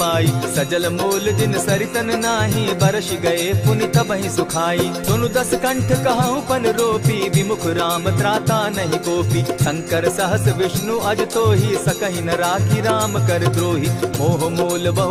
सजल मोल जिन सरितन नाही, बरस गए पुनि तबहि सुखाई। सुनु दस कंठ कहूँ पन रोपी, विमुख राम त्राता नहीं कोपी। शंकर सहस विष्णु अज तोहि, सकहि न राखी राम कर द्रोही। मोह मोल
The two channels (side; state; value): both; identical; correlation 1.00